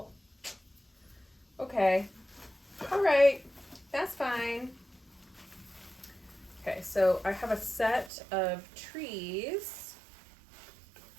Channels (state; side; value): drops out; left; at 8.1 s